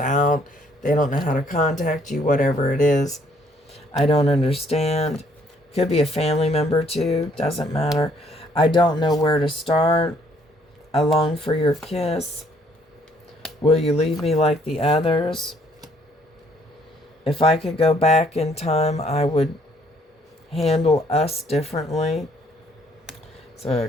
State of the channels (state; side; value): normal; both; correlation 0.65